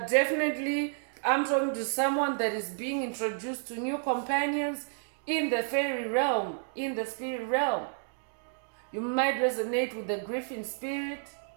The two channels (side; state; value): left; silent; digital silence